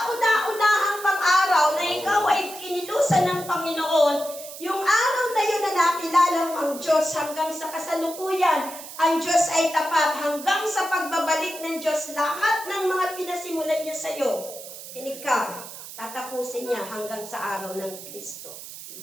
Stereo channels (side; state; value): right; noise; hiss, 13 dB below the sound